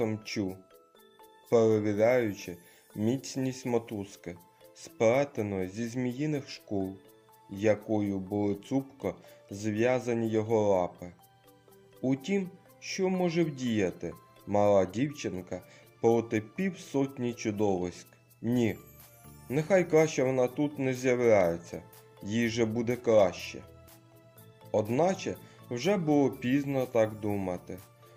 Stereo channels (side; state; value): both; identical; correlation 1.00